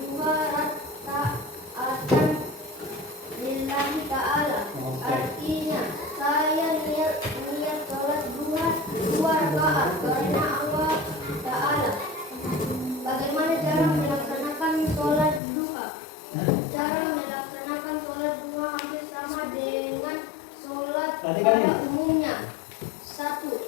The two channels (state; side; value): drops out; right; at 15.4 s